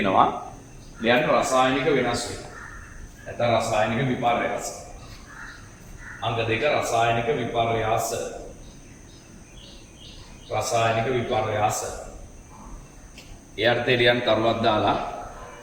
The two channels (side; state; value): both; identical; correlation 1.00